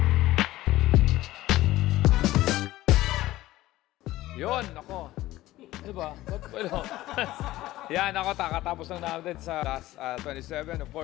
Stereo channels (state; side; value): quieter; right; 16.4 dB